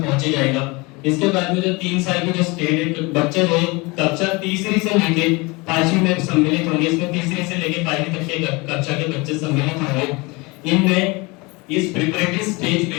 जाएगा। इसके बाद में जो 3 साल की जो स्टेज है बच्चे जो है कक्षा तीसरी से लेकर 5वीं में सम्मिलित होंगे, इसमें तीसरी से लेकर 5वीं तक के कक्षा के बच्चे सम्मिलित होंगे। इनमें इस प्रिपरेटरी स्टेज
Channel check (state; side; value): quieter; right; 25.6 dB